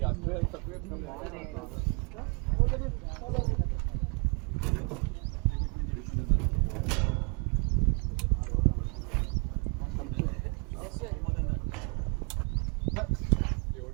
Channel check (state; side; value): quieter; left; 34.4 dB